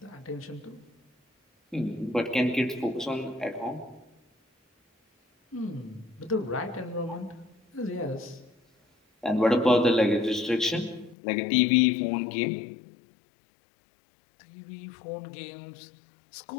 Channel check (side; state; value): right; drops out; at 11.2 s